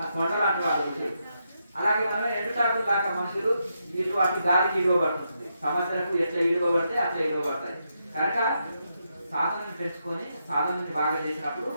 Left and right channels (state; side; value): inverted; both; correlation -0.82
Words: కొండ లాంటి వాళ్ళు. అలాగే మనం ఎండుటాకులు దాకా మనుషులు ఇటు అటు గాలికి ఇవ్వబడుతుంది. సమస్యలకు ఎట్లా ఇవ్వబడితే అట్లా ఇవ్వబడతాయి. కనుక సాధనని పెంచుకొని సాధనని బాగా చేసినప్పుడు